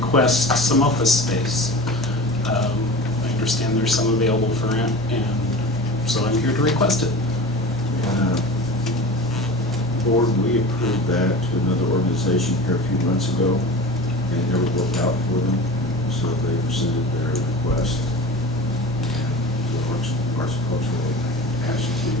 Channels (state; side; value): normal; both; correlation 0.35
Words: some office space. I understand there's some available for rent, and so I'm here to request it. Board, we approved that to another organization here a few months ago, and it never worked out for them, so they rescinded their request. The Arts and Cultural asked